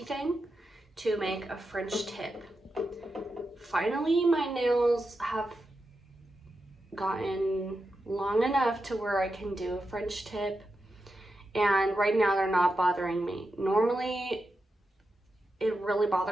thing to make a French tip. Finally, my nails have gotten long enough to where I can do a French tip, and right now they're not bothering me. Normally, it really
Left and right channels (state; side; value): normal; both; correlation 0.88